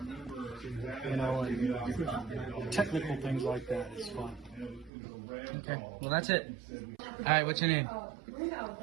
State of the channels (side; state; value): left; drops out; at 4.9 s